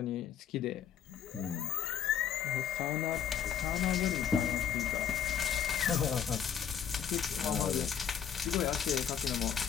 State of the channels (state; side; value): quieter; right; 8.5 dB